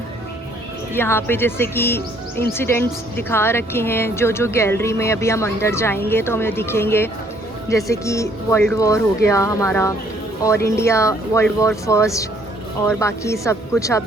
यहाँ पे जैसे कि इंसिडेंट्स दिखा रखे हैं जो गैलरी में अभी हम अंदर जाएंगे तो हमें दिखेंगे। जैसे कि वर्ल्ड वॉर हो गया हमारा, और इंडिया वर्ल्ड वॉर फर्स्ट, और बाकी सब कुछ आप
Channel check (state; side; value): normal; both; correlation 0.64